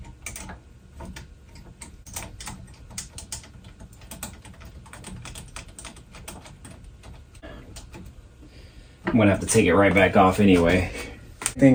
I'm gonna have to take it right back off anyway.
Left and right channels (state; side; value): identical; both; correlation 1.00